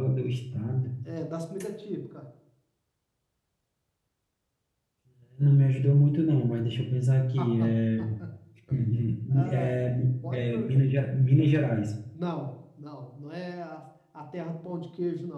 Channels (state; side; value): identical; both; correlation 1.00